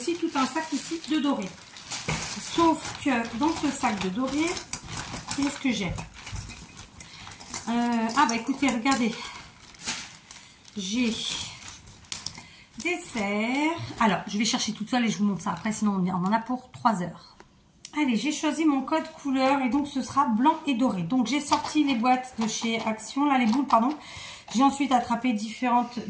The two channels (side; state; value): both; identical; correlation 1.00